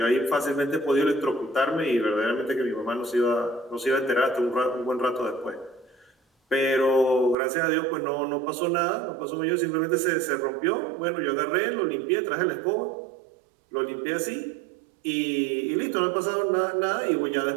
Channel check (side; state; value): left; drops out; at 7.4 s